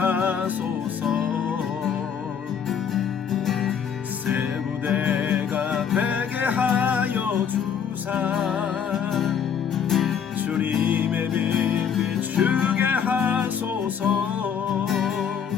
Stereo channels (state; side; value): quieter; right; 7.6 dB